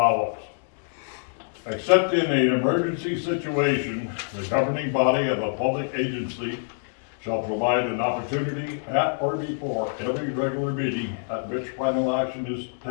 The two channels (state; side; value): silent; right; digital silence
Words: Except in an emergency situation, the governing body of a public agency shall provide an opportunity at or before every regular meeting at which final action is